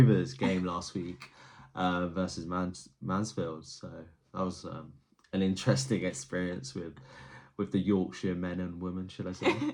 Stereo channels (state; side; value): identical; both; correlation 1.00